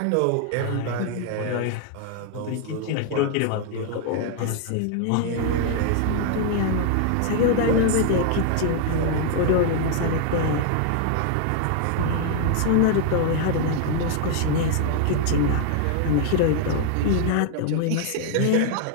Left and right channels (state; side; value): different; both; correlation 0.00